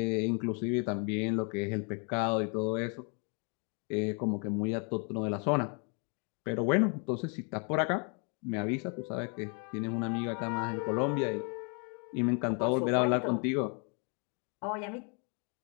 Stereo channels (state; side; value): quieter; right; 37.3 dB